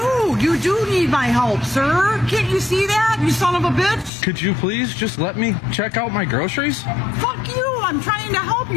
do need my help, sir. Can't you see that, you son of a bitch? Could you please just let me check out my groceries? Fuck you. I'm trying to help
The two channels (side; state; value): right; drops out; at 4.1 s